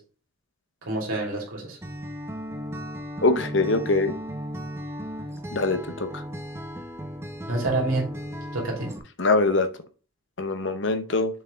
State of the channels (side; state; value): both; normal; correlation 0.07